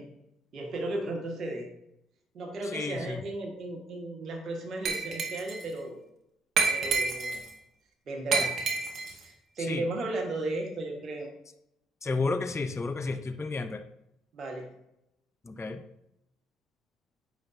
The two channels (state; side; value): normal; both; correlation 0.73